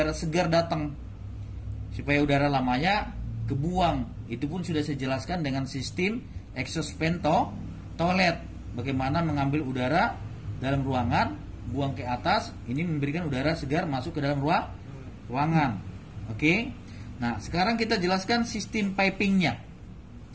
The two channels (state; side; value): identical; both; correlation 1.00